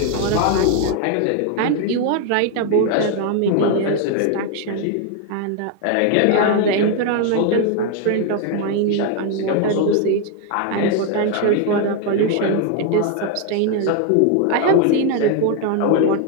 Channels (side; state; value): both; different; correlation 0.01